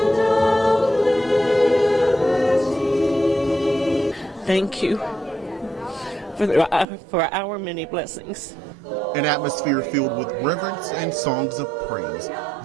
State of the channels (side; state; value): left; drops out; at 6.9 s